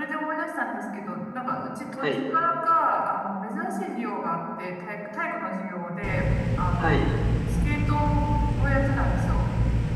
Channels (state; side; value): identical; both; correlation 1.00